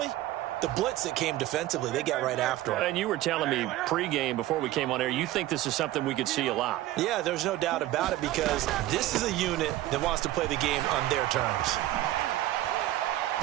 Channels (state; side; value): quieter; left; 15.1 dB